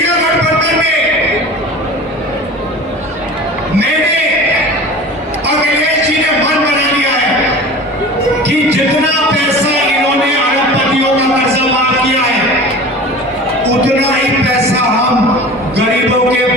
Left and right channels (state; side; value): normal; both; correlation 0.37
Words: गठबंधन में। मैंने अखिलेश जी ने मन बना लिया है कि जितना पैसा इन्होंने अरबपतियों का कर्जा माफ किया है, उतना ही पैसा हम गरीबों के